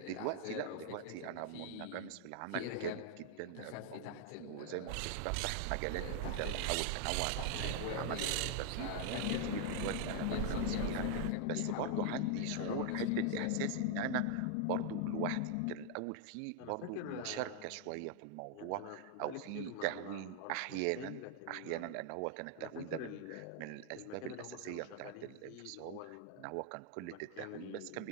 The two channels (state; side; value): different; both; correlation 0.00